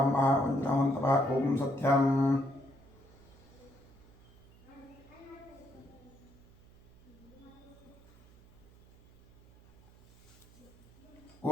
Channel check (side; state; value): right; noise; hum, 25 dB below the sound